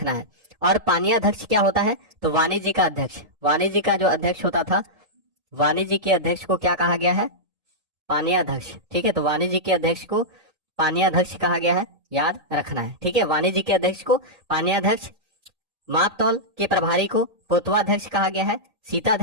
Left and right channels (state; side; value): late; left; 1.8 ms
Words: है। और पानीयाध्यक्ष क्या होता है? तो वाणिज्य का अध्यक्ष। वाणिज्य का जो अध्यक्ष होता था, वाणिज्य के अध्यक्ष को क्या कहा गया है? पानीयाध्यक्ष। ठीक है, तो वाणिज्य के अध्यक्ष को पानीयाध्यक्ष कहा गया है, याद रखना है। ठीक है, वाणिज्य के अध्यक्ष को पानीयाध्यक्ष, माप तौल के प्रभारी को पोतवाध्यक्ष कहा गया है।